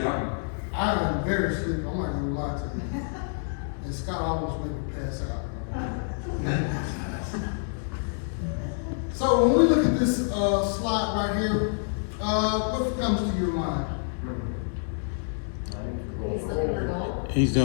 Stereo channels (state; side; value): silent; right; digital silence